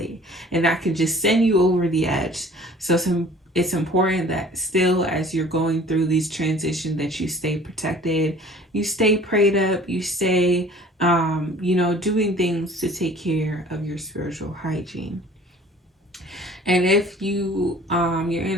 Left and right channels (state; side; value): normal; both; correlation 0.49